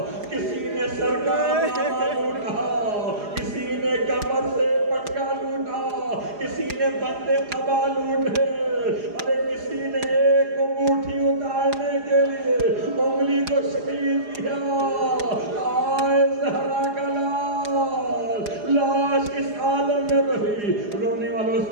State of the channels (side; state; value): left; late; 4.9 ms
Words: کسی نے سر کا امامہ لوٹا، کسی نے کمر سے پٹکا لوٹا، کسی نے بندے قبا لوٹے، ارے کسی نے ایک انگوٹھی اتارنے کے لیے انگلی کو شہید کیا، آئے زہرا کا لاش اس عالم میں بہی، رونے